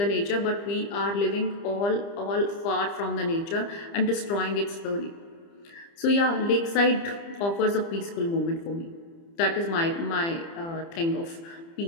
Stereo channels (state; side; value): late; right; 30 ms